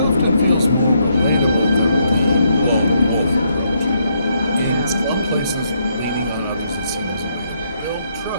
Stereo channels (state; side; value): inverted; both; correlation -0.75